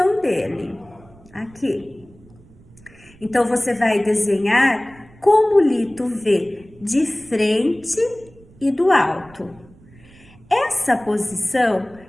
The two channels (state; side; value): noise; right; rumble, 25 dB below the sound